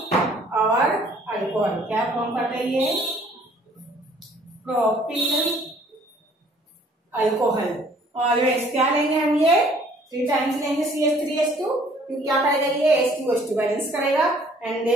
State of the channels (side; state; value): both; normal; correlation 0.58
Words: our alcohol. क्या फॉर्म करते हैं ये प्रोपिल अल्कोहल। ऑलवेज क्या लेंगे हम ये 3 टाइम्स लेंगे CH3H2, फिर क्या करेगा ये H2H2 बैलेंस करेगा and they